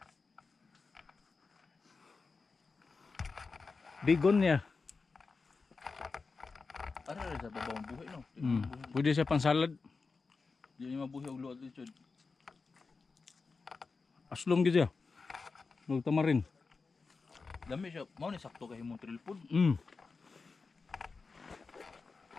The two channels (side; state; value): right; quieter; 4.4 dB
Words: Begonia. Ara ra sa babaw ang buhay no. Pwede siya pang salad. Di ni mabuhi og luad dito. Aslom gid siya. Huwag tamarin. Dami siya, mao ni sakto kay himong trail food.